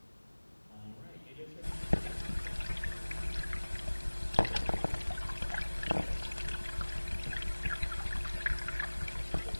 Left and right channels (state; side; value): inverted; both; correlation -1.00